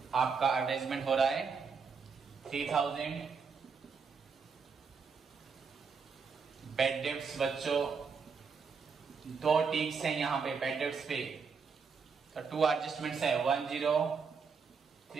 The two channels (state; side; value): quieter; left; 5.5 dB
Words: आपका एडवर्टाइजमेंट हो रहा है 3000। बेड डेप्ट्स बच्चों दो टिक्स हैं यहाँ पे बेड डेप्ट्स पे, तो 2 एडजस्टमेंट्स है 1030।